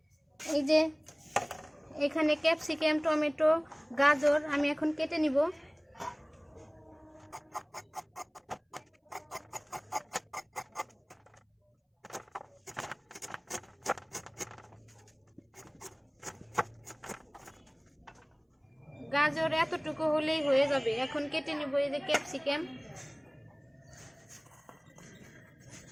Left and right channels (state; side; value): identical; both; correlation 1.00